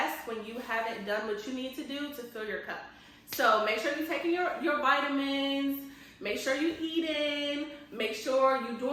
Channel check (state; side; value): identical; both; correlation 1.00